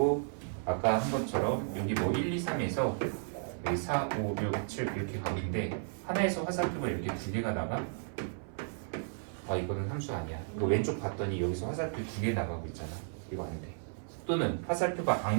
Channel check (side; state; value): left; silent; 55 dB below the other